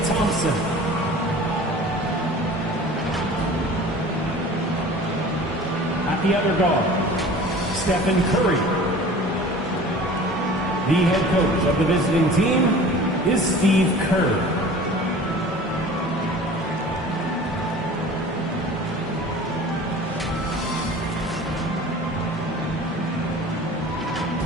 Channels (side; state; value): both; normal; correlation 0.42